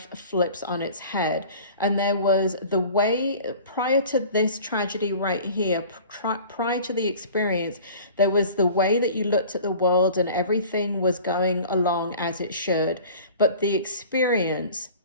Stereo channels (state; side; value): inverted; both; correlation -0.44